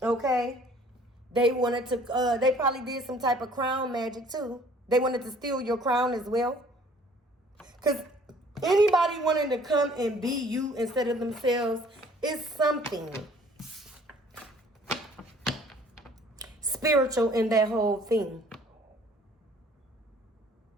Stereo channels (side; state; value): both; normal; correlation 0.55